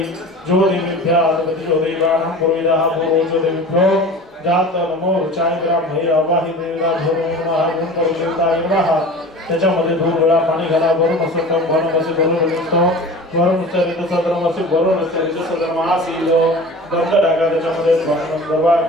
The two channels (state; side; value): normal; both; correlation 0.37